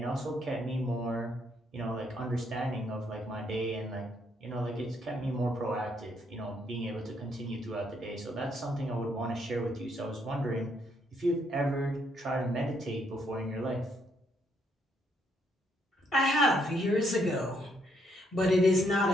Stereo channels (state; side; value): normal; both; correlation 0.73